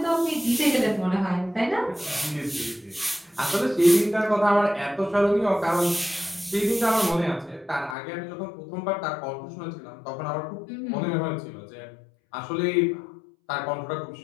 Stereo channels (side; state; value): right; drops out; at 8.0 s